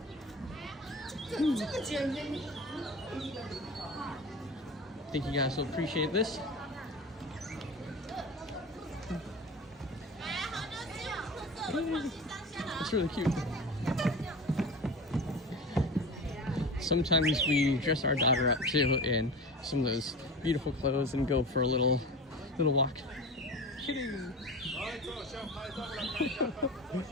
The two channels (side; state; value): both; normal; correlation 0.32